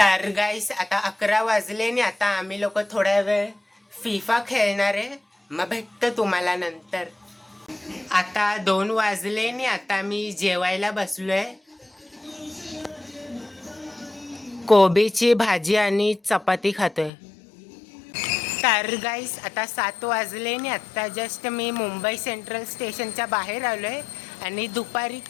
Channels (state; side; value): drops out; right; at 17.1 s